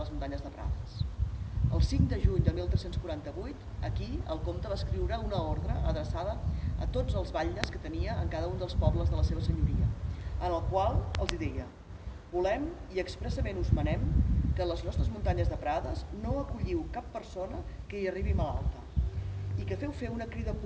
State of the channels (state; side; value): identical; both; correlation 1.00